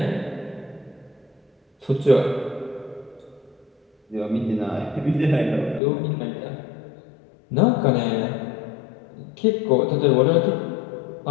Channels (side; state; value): right; drops out; at 5.8 s